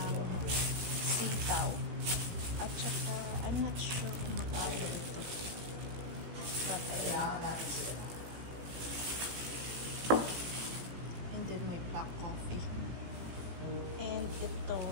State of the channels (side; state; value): left; late; 18 ms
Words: sitaw. At saka, I'm not sure kung magkano ito. And then may black coffee. And ito,